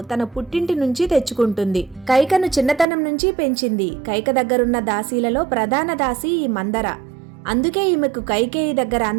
తన పుట్టింటి నుంచి తెచ్చుకుంటుంది. కైకను చిన్నతనం నుంచి పెంచింది. కైక దగ్గరున్న దాసీలలో ప్రధాన దాసి ఈ మందర. అందుకే ఈమెకు కైకేయి దగ్గర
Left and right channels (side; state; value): left; drops out; at 2.9 s